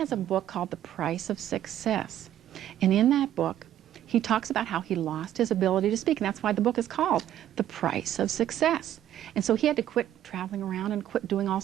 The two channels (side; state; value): left; quieter; 11.8 dB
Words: a book called The Price of Success. And in that book, he talks about how he lost his ability to speak. And that's why the book is called The Price of Success. And so he had to quit traveling around and quit doing all